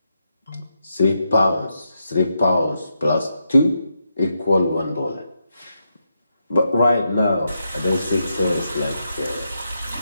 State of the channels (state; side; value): inverted; both; correlation -0.84